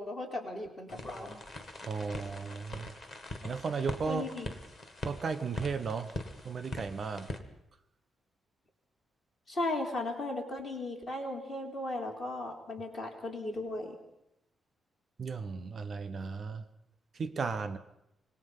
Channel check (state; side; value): normal; both; correlation 0.76